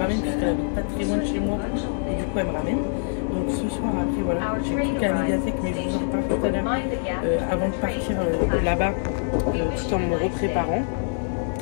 puisqu'elle habite pas très loin de chez moi. Et du coup elle me ramène. Donc ce soir après voilà. J'ai tout qu'à la médiathèque mais je vous en reparle tout à l'heure. Avant de partir là-bas. Tout en me repréparant.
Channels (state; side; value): silent; right; digital silence